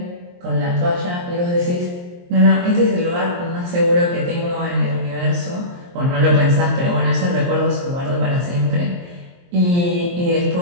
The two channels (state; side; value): late; left; 23 ms